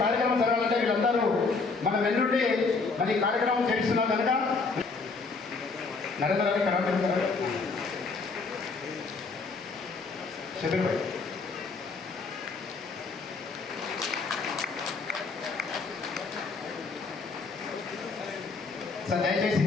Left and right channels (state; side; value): quieter; right; 4.3 dB